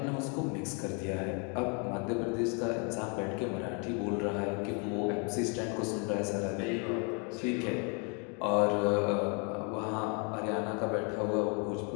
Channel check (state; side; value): quieter; right; 36.2 dB